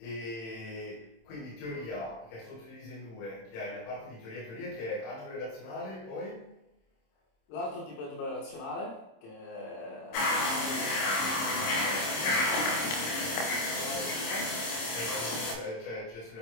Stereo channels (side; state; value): right; late; 27 ms